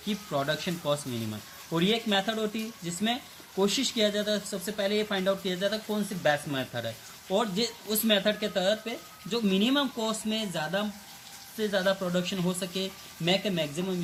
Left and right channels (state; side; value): identical; both; correlation 1.00